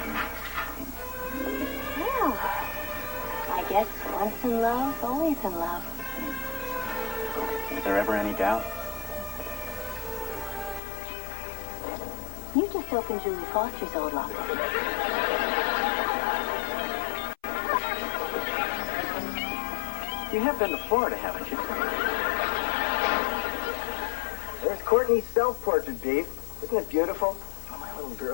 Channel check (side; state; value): right; drops out; at 10.8 s